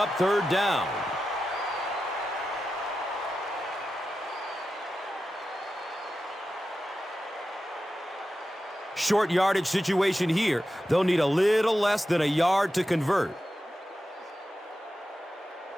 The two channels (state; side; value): normal; both; correlation 0.92